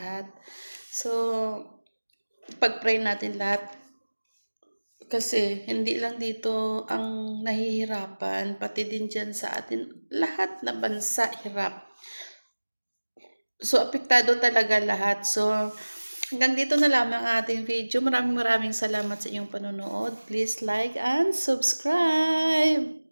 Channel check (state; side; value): inverted; both; correlation -1.00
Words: So, pag-pray natin lahat. Kasi hindi lang dito ang nahihirapan, pati din dyan sa atin, lahat na bansa hirap. So, apektado talaga lahat. So, hanggang dito na lamang ang ating video. Maraming salamat sa inyong panonood. Please like and subscribe.